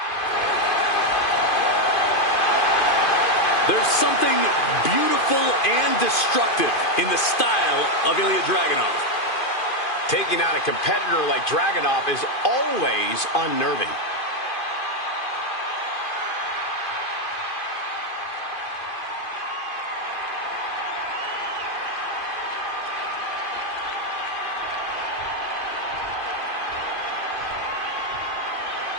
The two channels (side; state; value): right; late; 2.5 ms